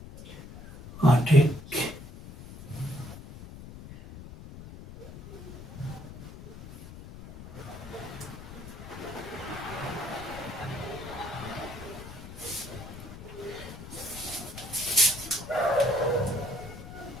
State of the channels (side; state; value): left; noise; rumble, 13 dB below the sound